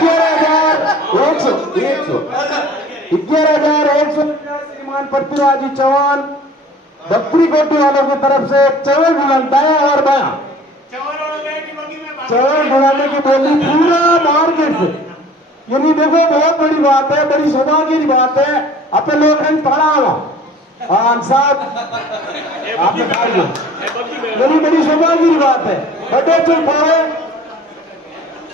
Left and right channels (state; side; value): normal; both; correlation 0.48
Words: 11,100 श्रीमान पृथ्वीराज चौहान बकरी कोटी वालों की तरफ से चवल ढुलाता है और बाया चवल ढुलाने की बोली पूरा मार्केट से, यानी देखो बहुत बड़ी बात है, बड़ी सौभाग्य की बात है। अपने लोग पढ़ा हुआ साहब आपने बड़ी बड़ी सौभाग्य की बात है। बड़े चुप पाए